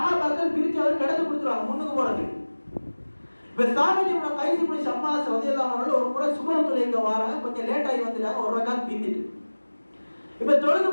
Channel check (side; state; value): both; inverted; correlation -1.00